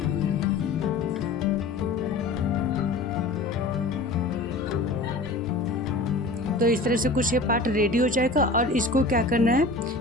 तो इस तरह से कुछ ये पार्ट रेडी हो जाएगा और इसको क्या करना है,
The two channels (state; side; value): quieter; right; 3.1 dB